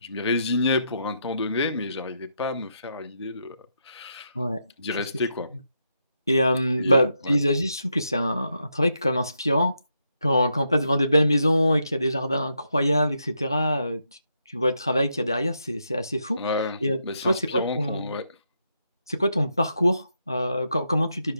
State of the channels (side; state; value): both; inverted; correlation -0.81